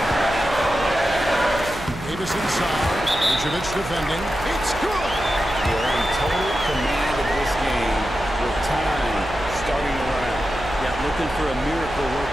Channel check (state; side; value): noise; right; hum, 11 dB below the sound